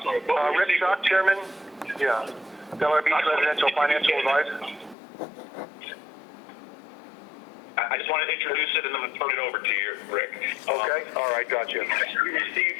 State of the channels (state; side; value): drops out; right; at 5.0 s